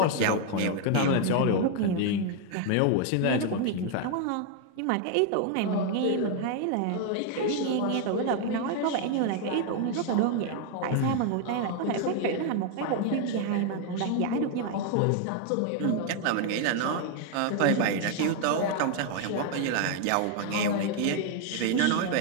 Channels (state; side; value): different; both; correlation 0.00